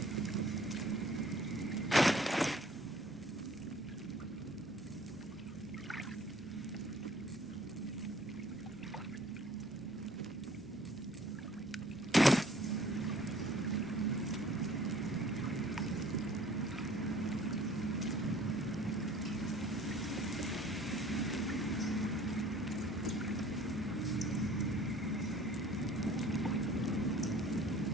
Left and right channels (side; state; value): both; normal; correlation 0.53